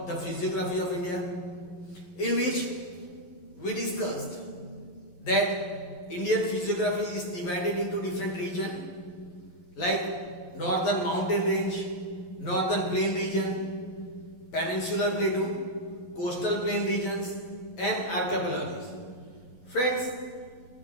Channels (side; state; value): right; late; 11 ms